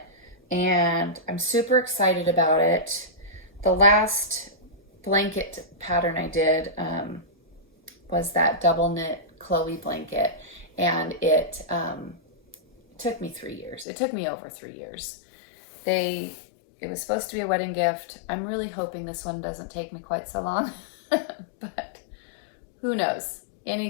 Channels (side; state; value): right; drops out; at 13.9 s